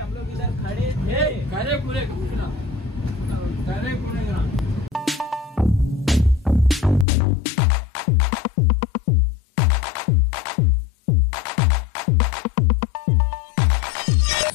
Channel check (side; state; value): right; drops out; at 7.1 s